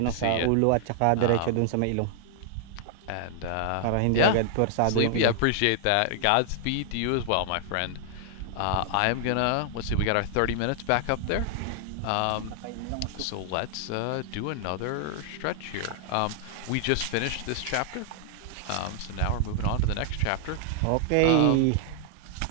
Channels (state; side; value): different; both; correlation 0.00